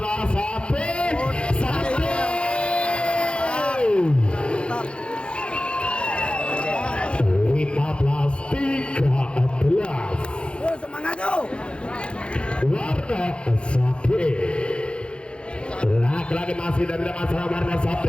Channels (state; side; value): late; right; 0.057 ms